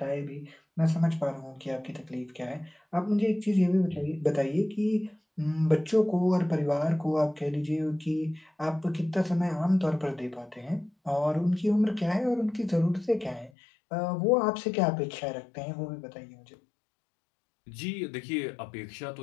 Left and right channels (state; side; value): drops out; right; at 13.5 s